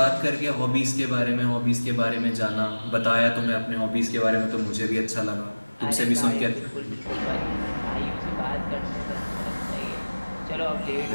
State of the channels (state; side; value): inverted; both; correlation -1.00